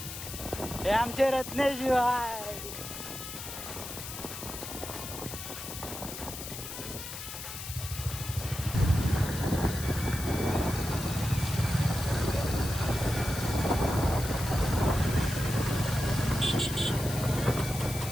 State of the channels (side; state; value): left; noise; hiss, 9 dB below the sound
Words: हे आमचे रत्नेश आहे.